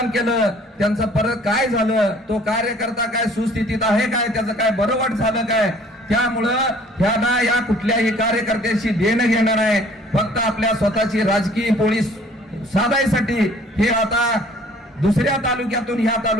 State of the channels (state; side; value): normal; both; correlation 0.55